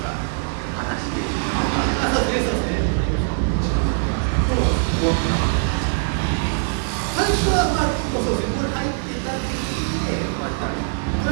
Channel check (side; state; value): left; silent; digital silence